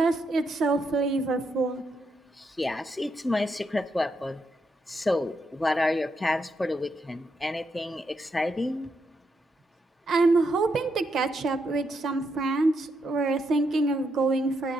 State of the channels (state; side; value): normal; both; correlation 0.80